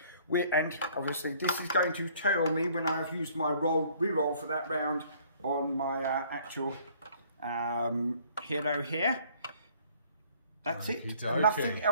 And obviously this is going to tell me when I've used my reroll for that round on my actual hero here. That's it. Okay. Nothing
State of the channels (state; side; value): inverted; both; correlation -0.58